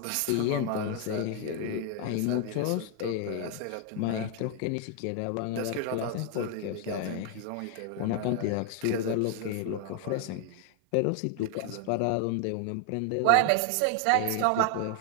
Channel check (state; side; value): different; both; correlation 0.00